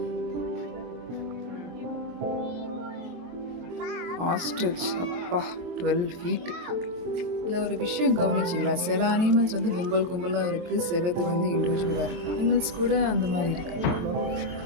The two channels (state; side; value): late; left; 23 ms